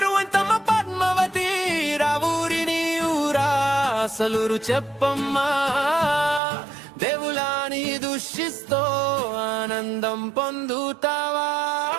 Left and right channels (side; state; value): left; drops out; at 6.4 s